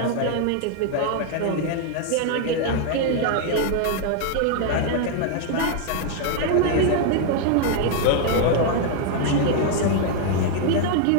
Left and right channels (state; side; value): different; both; correlation 0.00